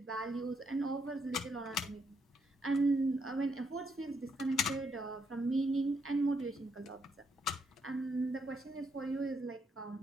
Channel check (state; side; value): normal; both; correlation 0.75